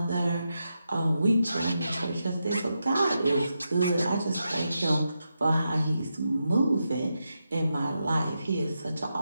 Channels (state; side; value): inverted; both; correlation -0.87